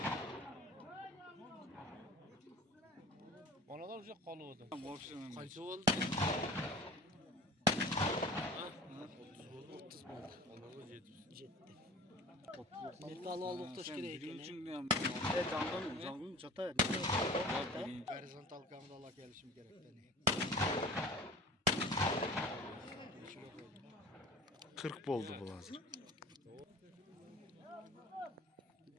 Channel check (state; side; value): normal; both; correlation 0.41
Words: Onalar o'sha qoluvdi. Qancha bo'ldi? 30 bo'ldi. Onalar 70. Metal olib o'xtash kerak ekan. Jongun chata. Horizontal kameralar kelishim kerak-da. 40 bo'ldi bu hozir.